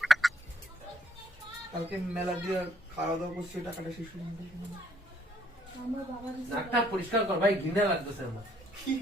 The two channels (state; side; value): normal; both; correlation 0.66